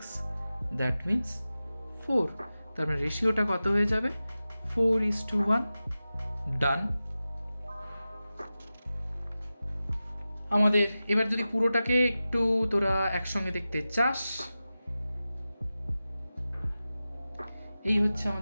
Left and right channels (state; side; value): inverted; both; correlation -0.94